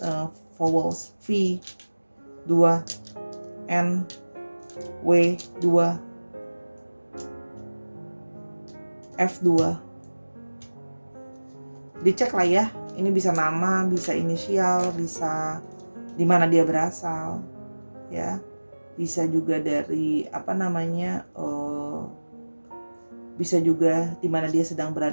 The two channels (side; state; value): both; inverted; correlation -1.00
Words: vowels. V 2, N, W 2, F 2. Dicek lah ya, ini bisa nama, bisa inisial, bisa di mana dia berasal, ya, bisa juga dari bisa juga di mana dia sedang